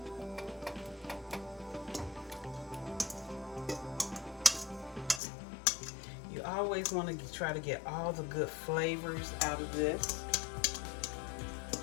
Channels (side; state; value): right; drops out; at 5.2 s